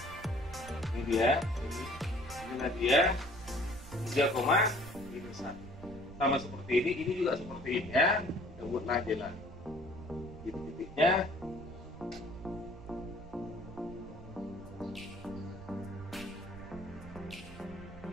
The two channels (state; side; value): noise; right; rumble, 16 dB below the sound